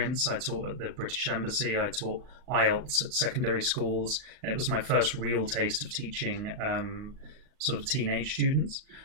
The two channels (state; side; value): late; left; 39 ms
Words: I taught at the British Embassy, I taught IELTS at secondary schools, and it was my first real taste of teaching sort of teenage students.